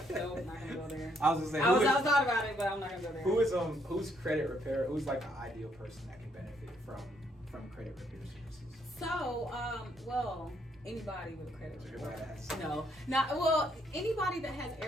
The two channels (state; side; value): normal; both; correlation 0.71